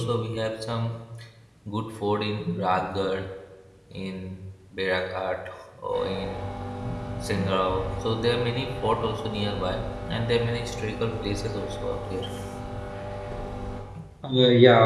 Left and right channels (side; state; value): both; identical; correlation 1.00